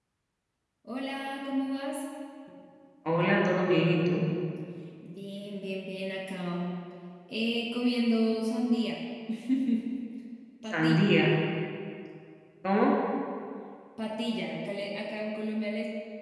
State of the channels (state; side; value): identical; both; correlation 1.00